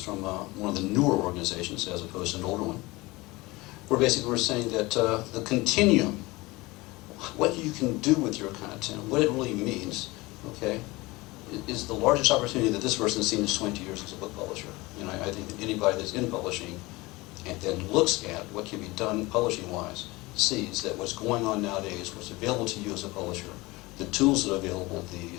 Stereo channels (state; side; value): quieter; right; 22.0 dB